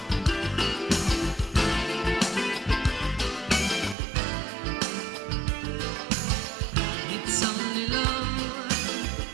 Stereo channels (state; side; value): drops out; left; at 4.0 s